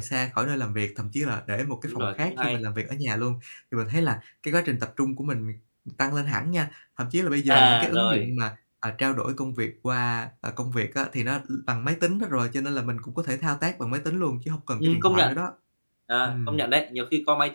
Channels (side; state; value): both; inverted; correlation -1.00